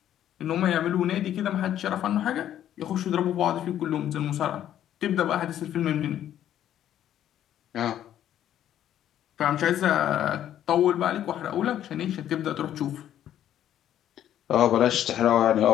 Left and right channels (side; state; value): right; quieter; 11.1 dB